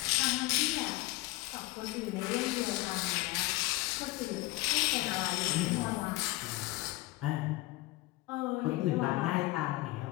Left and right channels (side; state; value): right; quieter; 19.9 dB